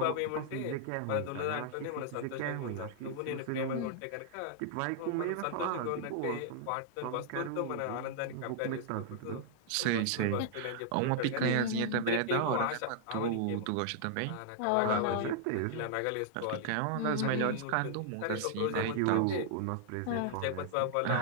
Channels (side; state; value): both; different; correlation -0.01